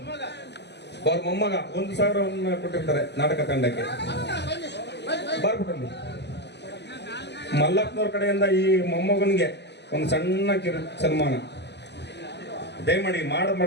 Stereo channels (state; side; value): late; right; 0.50 ms